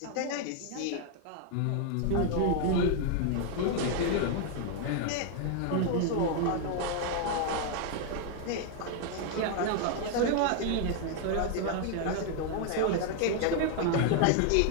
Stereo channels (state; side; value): different; both; correlation 0.00